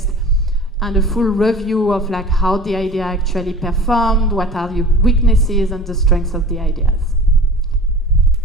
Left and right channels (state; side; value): normal; both; correlation 0.40